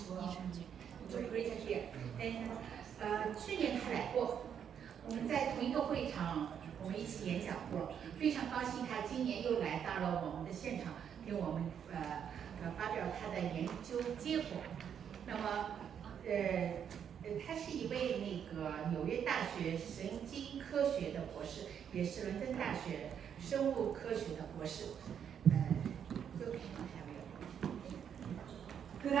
well. It's great to hear. And 去年他来过，我们在同一个会场，我们一起演讲过。非常高兴他今年又来到了我们的现场，给我们发表他的研究结果。那么他是一位纽约大学神经科学的博士，也是伦敦大学生物科学的博士。Good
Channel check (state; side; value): quieter; left; 8.3 dB